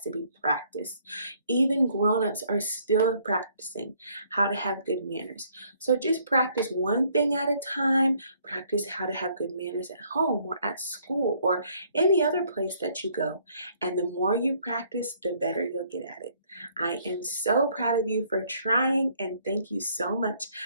be practiced. Even grown-ups are still practicing how to have good manners. So just practice one thing at a time. Practice how to have good manners at home or at school or any other place that you go. And the more you practice, the better you'll get at it. I am so proud of you for trying, and thank you so much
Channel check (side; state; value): both; inverted; correlation -0.65